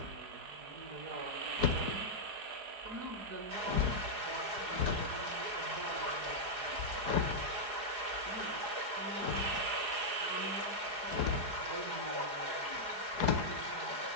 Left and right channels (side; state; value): left; late; 4.8 ms